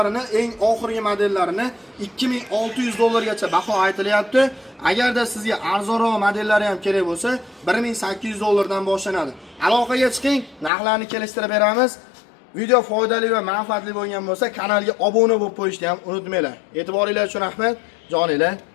eng oxirgi modellarini $2600 baho aytilyapti. Agarda sizga arzonroq modellari ham kerak bo'lsa, $1800 dan boshlanadi. Aloqaga chiqing, narxlarni kelishtirib beramiz. Video foydali va manfaatli bo'lgan bo'lsa, kanalga obuna bo'lib qo'yishni ham unutmanglar. E'tiboringiz uchun rahmat. Joninglar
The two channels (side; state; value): right; drops out; at 10.7 s